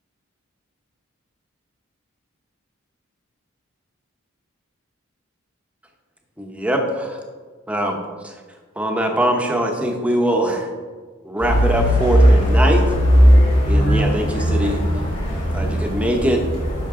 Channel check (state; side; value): normal; both; correlation 0.82